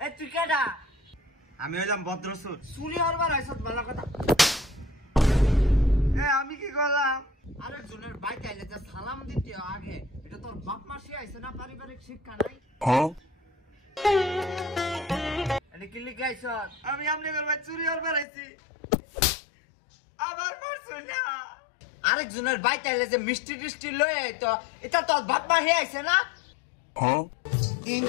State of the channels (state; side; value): drops out; right; at 18.2 s